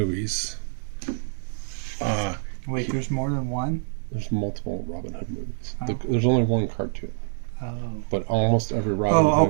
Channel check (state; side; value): silent; left; digital silence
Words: Wait, there's more than one? there's multiple Robin Hood movies. Oh. There's only one cartoon, Oh. but almost every Robin Oh,